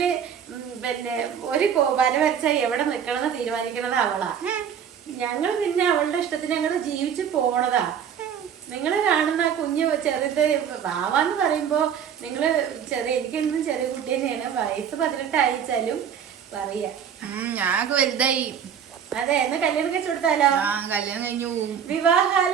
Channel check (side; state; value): left; quieter; 8.2 dB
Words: പിന്നെ ഒരു വര വരച്ചാൽ എവിടെ നിക്കണമെന്ന് തീരുമാനിക്കണത് അവളാ. ഞങ്ങൾ പിന്നെ അവളുടെ ഇഷ്ടത്തിന് ഞങ്ങള് ജീവിച്ചു പോണതാ. നിങ്ങള് കാണുന്ന കുഞ്ഞ് ചെറുത് വാവാന്ന് പറയുമ്പോ നിങ്ങള് എനിക്കെന്നും ചെറിയ കുട്ടി തന്നെയാണ്. വയസ്സ് 18 ആയിച്ചാലും പറയാ ഞാൻ വലുതായി. അതെ, എന്നാ കല്യാണം കഴിച്ചു കൊടുത്താലോ? കല്യാണം കഴിഞ്ഞു.